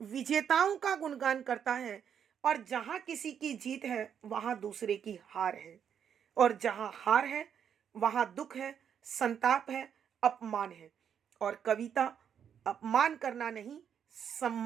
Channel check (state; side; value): quieter; left; 8.2 dB